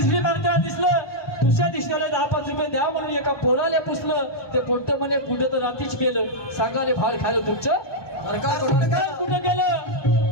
मागताना दिसलं दुसऱ्या दिवसाला 10-5 रुपये द्या म्हणून एका पोराला पुसलं ते पोट्ट म्हणे पुढे तर रात्रीच गेलं सांगाले भाड खायला तुमचं कुठं गेलं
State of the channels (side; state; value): right; late; 1.2 ms